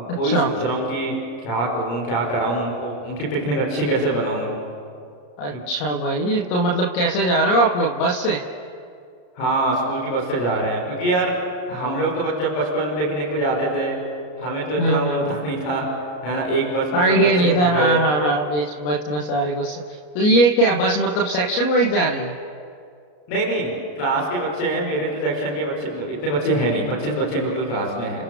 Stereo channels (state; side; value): late; right; 34 ms